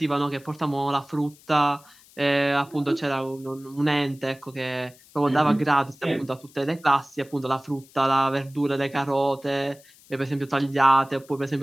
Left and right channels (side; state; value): left; noise; hiss, 26 dB below the sound